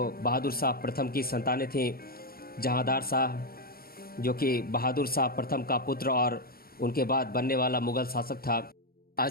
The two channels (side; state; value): right; late; 0.44 ms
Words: बहादुर शाह प्रथम की संतानें थीं जहांदार शाह जो कि बहादुर शाह प्रथम का पुत्र और उनके बाद बनने वाला मुग़ल शासक था,